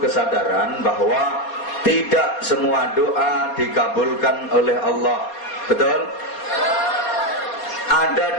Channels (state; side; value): late; right; 4.2 ms